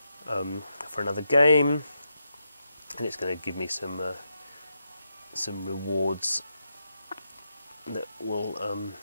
for another game, and it's going to give me some rewards that will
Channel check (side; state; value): both; inverted; correlation -0.84